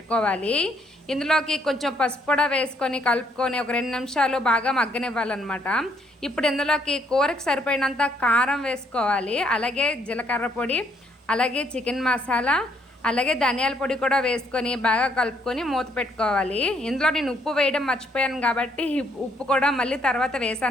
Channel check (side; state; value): both; normal; correlation 0.70